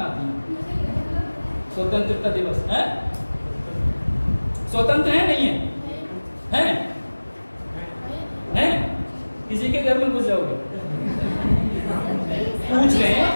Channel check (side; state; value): both; inverted; correlation -1.00